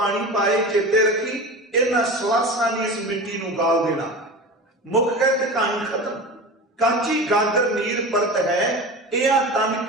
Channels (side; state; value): both; normal; correlation 0.31